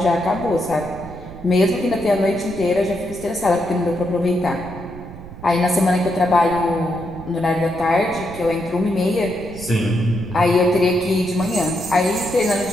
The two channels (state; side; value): noise; right; rumble, 15 dB below the sound